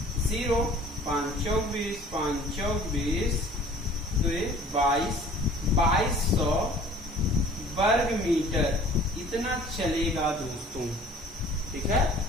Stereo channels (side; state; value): both; normal; correlation 0.50